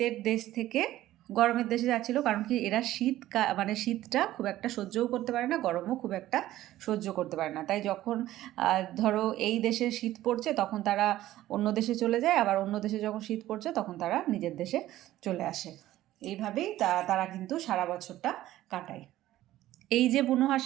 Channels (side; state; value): left; quieter; 14.6 dB